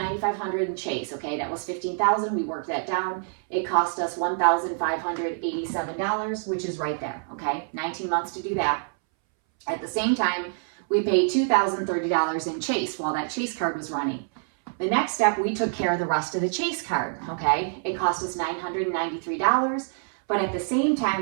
in Chase, okay, that was $15,000. We worked that down. It cost us $1,587, which is right there, okay? 19 months to do that. At the same time, we paid $2,030 in Chase while that Chase card was running. The next step, we took care of the rest of the Chase card, okay? It cost us $993, but at the same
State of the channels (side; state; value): left; silent; 61 dB below the other